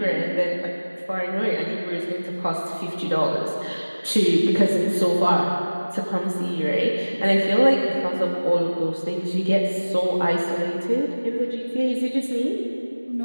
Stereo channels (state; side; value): inverted; both; correlation -1.00